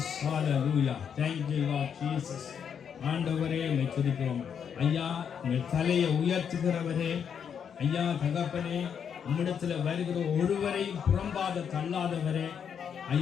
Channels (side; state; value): right; quieter; 7.6 dB